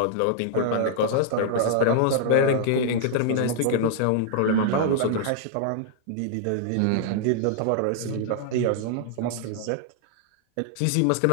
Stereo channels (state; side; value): different; both; correlation -0.01